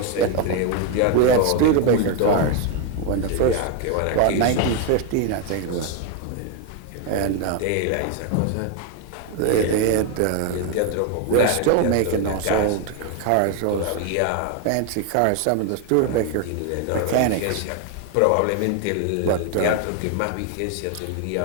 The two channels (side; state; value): both; different; correlation 0.01